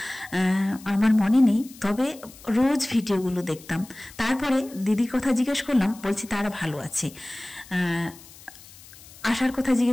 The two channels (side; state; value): left; noise; hiss, 20 dB below the sound